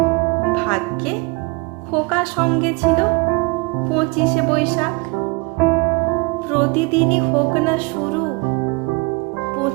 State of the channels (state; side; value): quieter; left; 26.8 dB